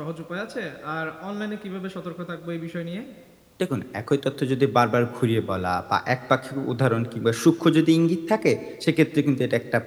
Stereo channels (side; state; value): both; identical; correlation 1.00